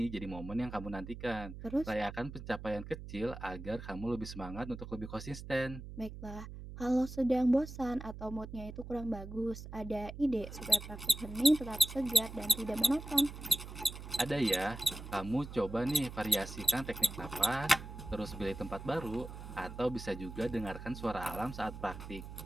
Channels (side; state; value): right; noise; hum, 11 dB below the sound